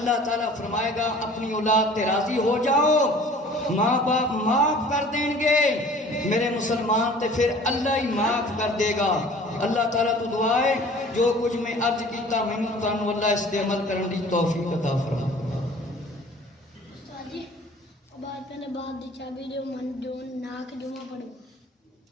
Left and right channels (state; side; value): normal; both; correlation 0.48